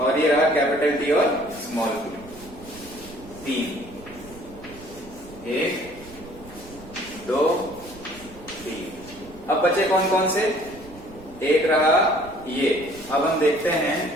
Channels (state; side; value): noise; right; rumble, 19 dB below the sound